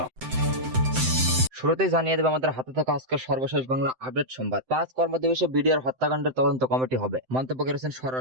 শুরুতেই জানিয়ে দেব আমাদের হাতে থাকা আজকের সর্বশেষ বাংলা আপডেট সংবাদ। 5 কর্মদিবসে বিডিআর হত্যাকাণ্ডের তদন্ত কমিটি হবে, মন্তব্য করেছেন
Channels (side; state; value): left; late; 7.8 ms